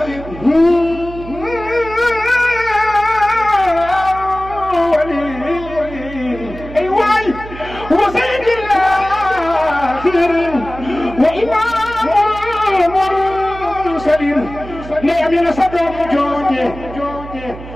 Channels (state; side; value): noise; right; hum, 13 dB below the sound